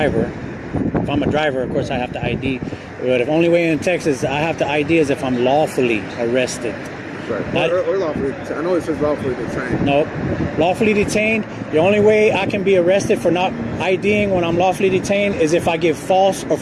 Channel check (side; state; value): both; identical; correlation 1.00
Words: If I'm a driver, of course I have to ID. But the only way in Texas I have to ID is if I'm lawfully arrested. Right. Or lawfully. I know it says lawfully detained. No. Lawfully detained. The only way I can be arrested for not IDing when I'm lawfully detained is if I give false or